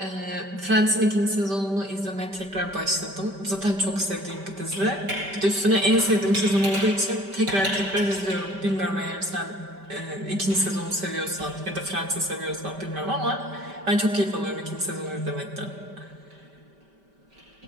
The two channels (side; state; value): left; late; 5.1 ms